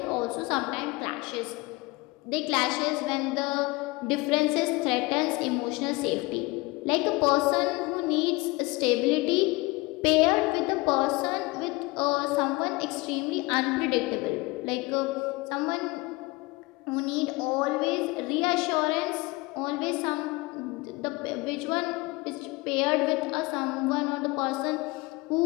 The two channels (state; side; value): quieter; right; 23.3 dB